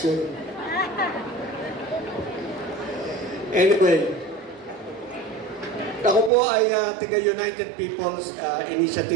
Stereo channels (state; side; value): drops out; left; at 6.3 s